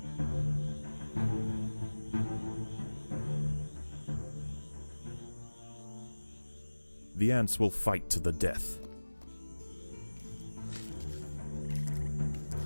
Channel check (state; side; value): inverted; both; correlation -1.00